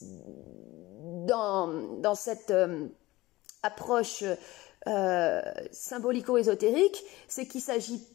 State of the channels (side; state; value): right; quieter; 19.0 dB